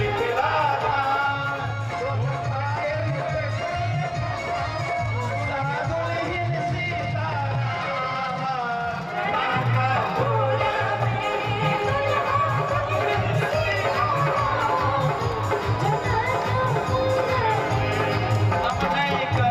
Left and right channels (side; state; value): both; identical; correlation 1.00